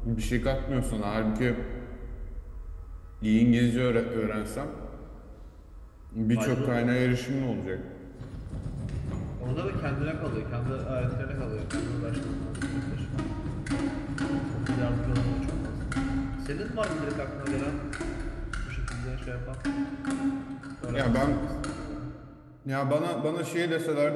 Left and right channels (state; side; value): identical; both; correlation 1.00